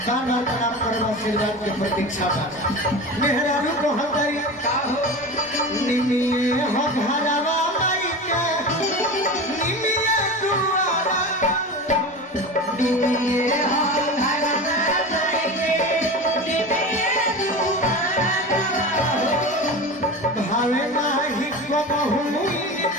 बार प्रणाम करवा आशीर्वाद के प्रतीक्षा मेहरारू को हमारी निमिये हो घरवा माई के निमिये दुआरा निमिये हो भावे नाही को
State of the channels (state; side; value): normal; both; correlation 0.29